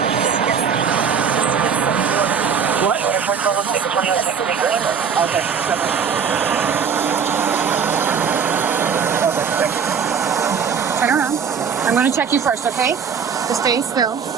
Okay. Turn around. I'm going to check you first, okay? Just stay still.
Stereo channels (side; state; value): left; quieter; 6.7 dB